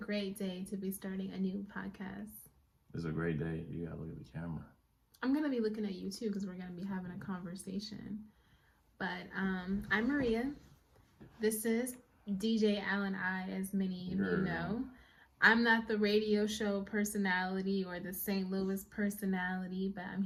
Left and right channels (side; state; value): both; identical; correlation 1.00